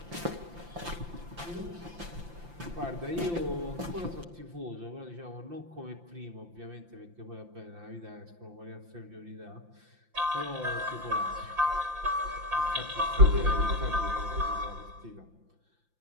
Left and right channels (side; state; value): left; late; 5.8 ms